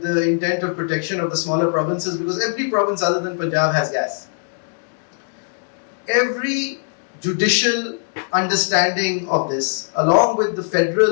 the intent of protection of the smaller provinces, because every province other than Punjab has gas. Every judicial understanding of this, along with the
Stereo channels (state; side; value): silent; right; digital silence